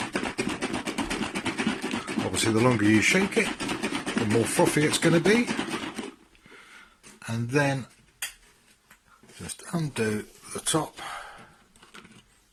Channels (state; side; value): identical; both; correlation 1.00